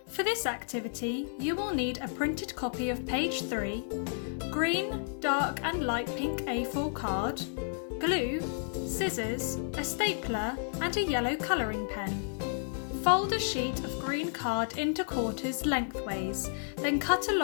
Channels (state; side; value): silent; right; digital silence